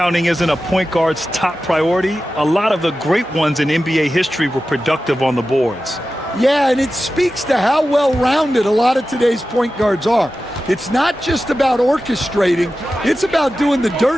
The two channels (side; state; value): both; normal; correlation 0.93